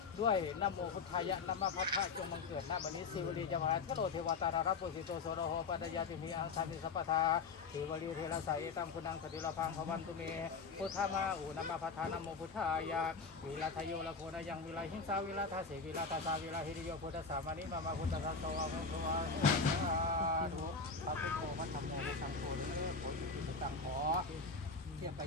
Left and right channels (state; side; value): quieter; right; 4.6 dB